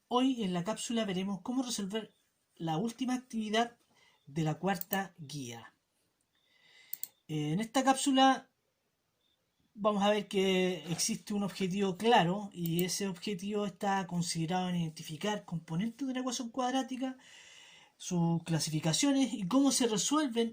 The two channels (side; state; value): both; identical; correlation 1.00